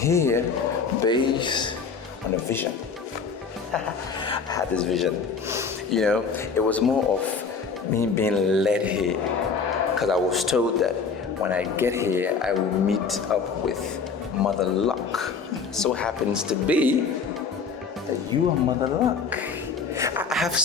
based on a vision. I had this vision. You know, it was more of me being led here. Because I was told that when I get here, I will meet up with Mother Luck. So happens to be that you are Mother Luck. I have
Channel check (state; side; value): quieter; right; 5.3 dB